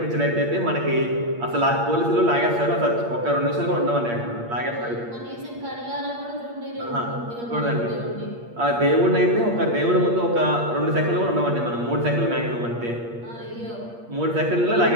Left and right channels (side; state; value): left; late; 8.5 ms